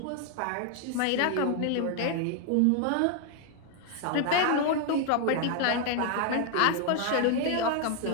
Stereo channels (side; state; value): both; different; correlation 0.00